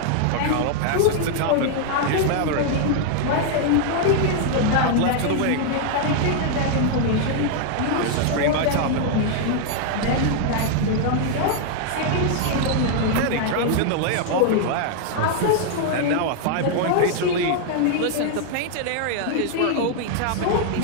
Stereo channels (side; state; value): both; different; correlation 0.00